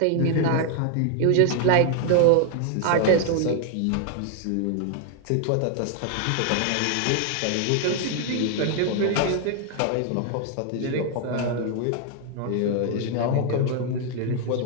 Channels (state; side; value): different; both; correlation 0.00